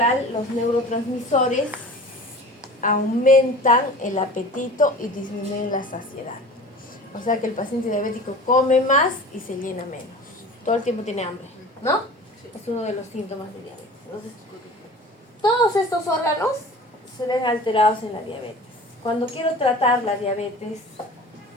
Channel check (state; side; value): normal; both; correlation 0.40